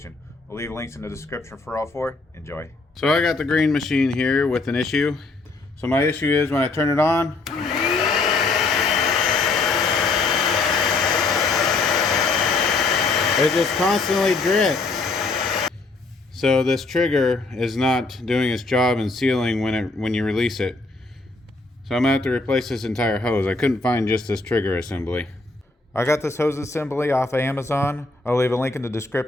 We'll leave links in the description for all four. Enjoy. So I got the green machine here with an issue. So my issue is when I turn it on, it just constantly drips. So this trigger is not doing its job in sealing when you release it. So I'm gonna have to replace this entire hose. I couldn't find just this trigger assembly. I got this hose assembly off of Amazon. I'll leave a link in the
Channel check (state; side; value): quieter; right; 3.6 dB